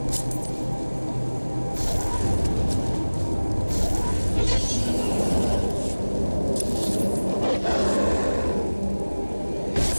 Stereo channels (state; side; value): inverted; both; correlation -1.00